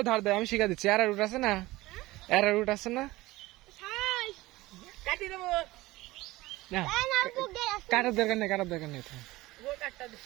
ধার দেয় আমি শিখা দিচ্ছি। আর রুট আছে না? আর রুট আছে না? না, কাটার দরকার নেই, কাটার দরকার নেই।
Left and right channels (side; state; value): left; quieter; 19.0 dB